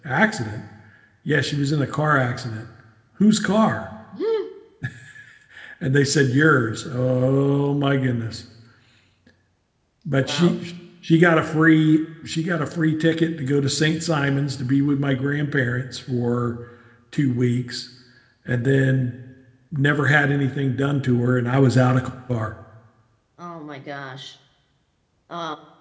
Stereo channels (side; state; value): both; identical; correlation 1.00